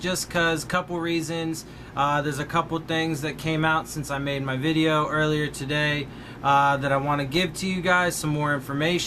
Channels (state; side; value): identical; both; correlation 1.00